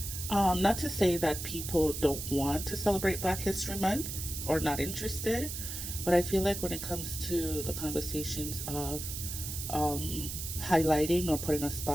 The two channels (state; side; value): noise; right; hiss, 6 dB below the sound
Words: Not to say that people don't want to celebrate Black History Month or not interested, but I feel like when it comes to the conversations of highlighting or putting a